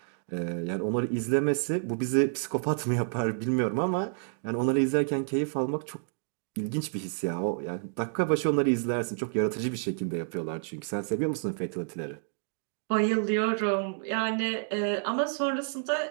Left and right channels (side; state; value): left; silent; digital silence